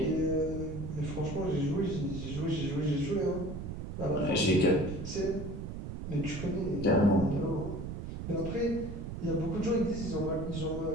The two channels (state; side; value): noise; right; rumble, 7 dB below the sound